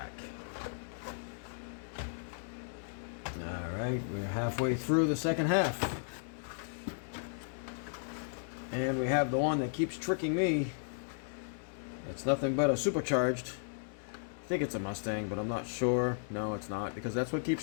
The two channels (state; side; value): silent; right; digital silence